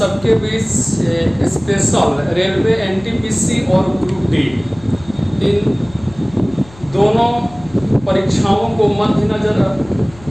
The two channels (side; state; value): left; noise; hum, 22 dB below the sound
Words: बीच स्पेशल रेलवे एनटीपीसी और ग्रुप डी इन दोनों परीक्षाओं को मद्देनजर